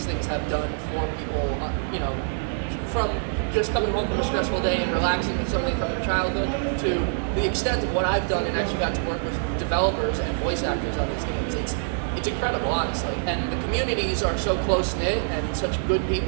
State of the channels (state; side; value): silent; left; digital silence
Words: things have done for people. You know, from just coming home from a stressful day and relaxing with something from your childhood to the extent of what I've done and actually got to work with developers and voice actors on these games. It's incredible, honestly. And the communities are so close-knit and such good